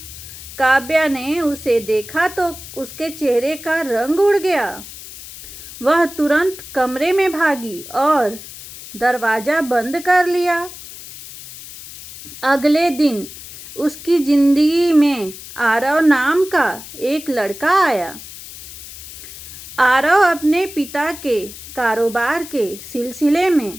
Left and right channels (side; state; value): left; noise; hiss, 14 dB below the sound